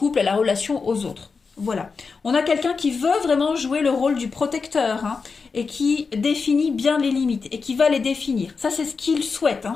à la relation aux autres. Voilà. On a quelqu'un qui veut vraiment jouer le rôle du protecteur et qui définit bien les limites et qui va les définir. Ça, c'est ce qu'il souhaite,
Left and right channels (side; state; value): right; quieter; 4.9 dB